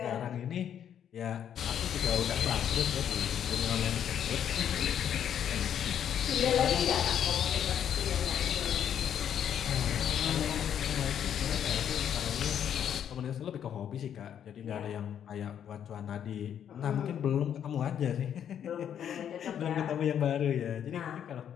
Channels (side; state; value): right; quieter; 9.2 dB